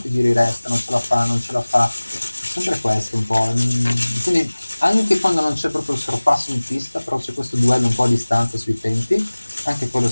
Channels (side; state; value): both; inverted; correlation -1.00